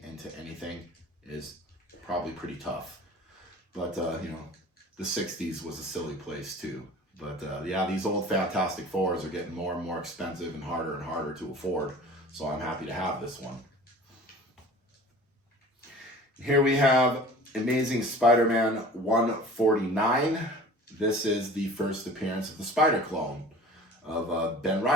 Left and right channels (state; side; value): normal; both; correlation 0.43